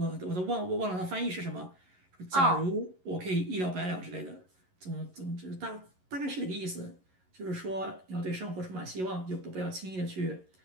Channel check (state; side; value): late; left; 11 ms